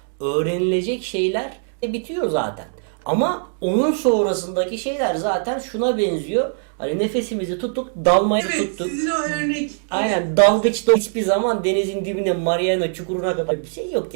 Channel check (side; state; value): left; silent; digital silence